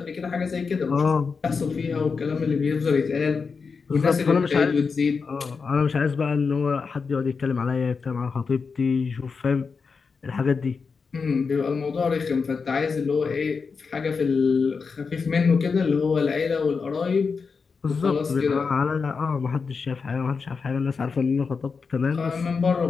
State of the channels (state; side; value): quieter; right; 5.1 dB